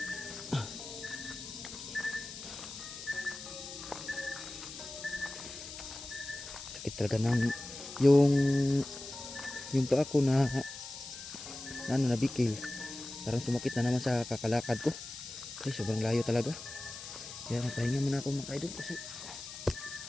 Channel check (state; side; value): noise; left; hiss, 11 dB below the sound